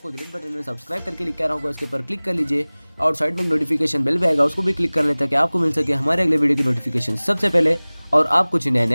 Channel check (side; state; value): both; inverted; correlation -1.00